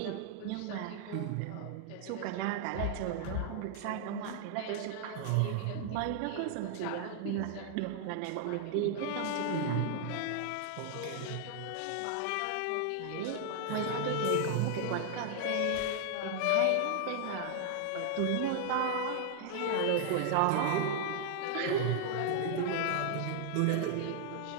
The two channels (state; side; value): different; both; correlation 0.00